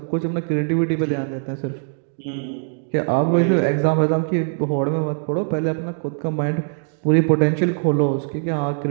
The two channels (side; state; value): left; silent; 65 dB below the other